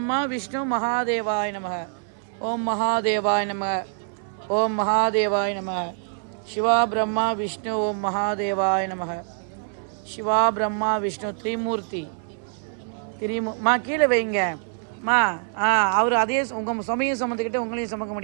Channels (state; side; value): silent; left; 57 dB below the other